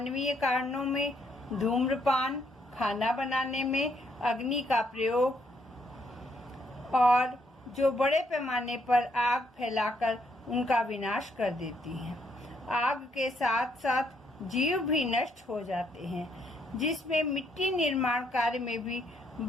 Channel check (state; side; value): normal; both; correlation 0.73